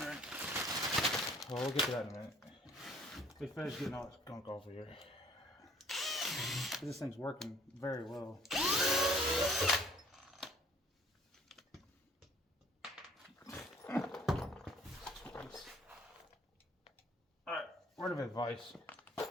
well, we'll get to that in a minute. We finished getting all this gunk off of here. This thing's working very well. Alright, word of advice.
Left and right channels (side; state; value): both; normal; correlation 0.57